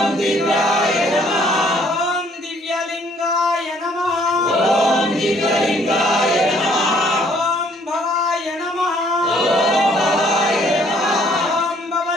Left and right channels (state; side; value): normal; both; correlation 0.63